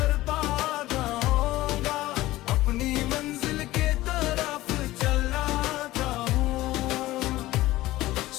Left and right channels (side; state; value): right; quieter; 17.1 dB